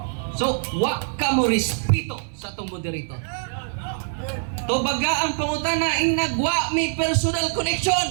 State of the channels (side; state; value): left; silent; 61 dB below the other